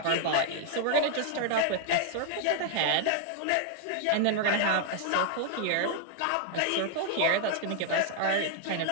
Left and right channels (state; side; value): different; both; correlation 0.00